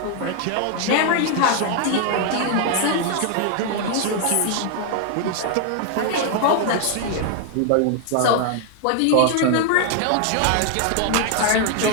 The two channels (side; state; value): both; different; correlation 0.00